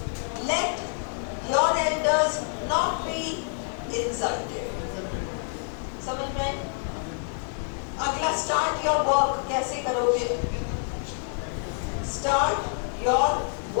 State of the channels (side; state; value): right; silent; 60 dB below the other